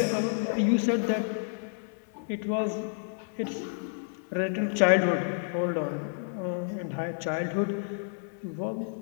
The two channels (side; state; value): right; silent; digital silence